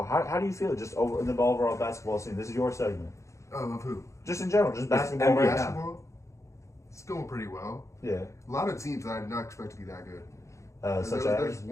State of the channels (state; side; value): late; right; 0.14 ms